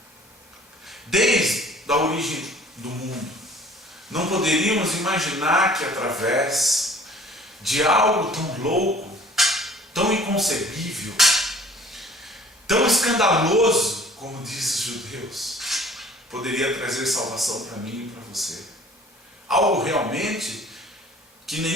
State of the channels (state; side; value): normal; both; correlation 0.51